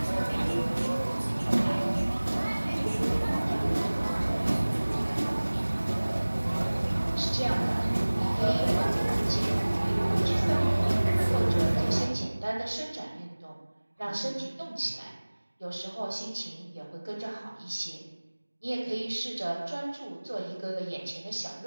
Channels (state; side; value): inverted; both; correlation -1.00